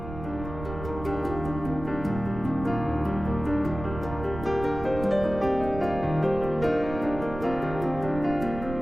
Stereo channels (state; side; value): noise; right; rumble, 10 dB below the sound